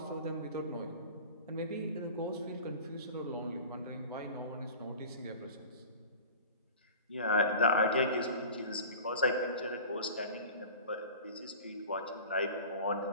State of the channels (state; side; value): inverted; both; correlation -0.38